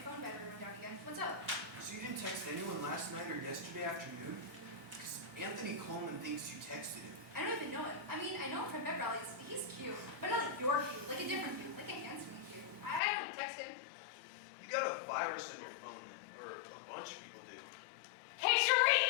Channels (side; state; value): right; drops out; at 13.0 s